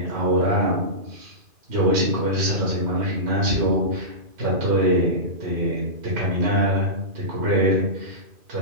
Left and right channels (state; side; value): late; left; 2.4 ms